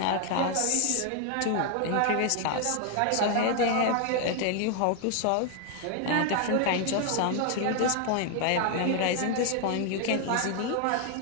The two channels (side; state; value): both; different; correlation 0.00